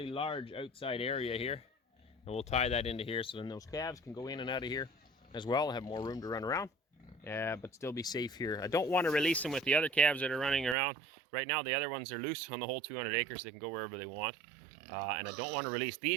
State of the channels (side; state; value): left; drops out; at 10.8 s